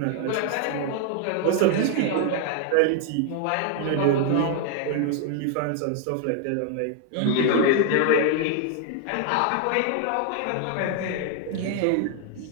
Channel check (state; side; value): different; both; correlation 0.00